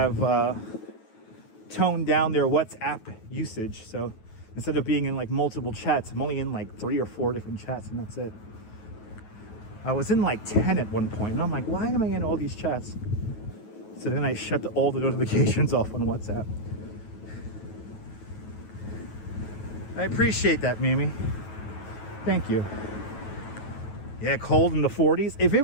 toned down their WhatsApp usage. So instead of being in like multiple chats, I'm only in like 3 or 4 different chats, and that's it. I was in like 10 at one point, and I'm like, why am I in all these chats? So then I shut all the notifications off on WhatsApp. I appreciate that, Mimi. Thank you. Yeah, cold in the 40s. If it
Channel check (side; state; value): right; late; 9.3 ms